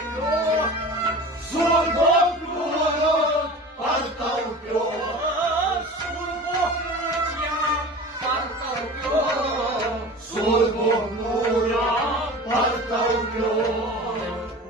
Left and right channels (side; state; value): both; normal; correlation 0.36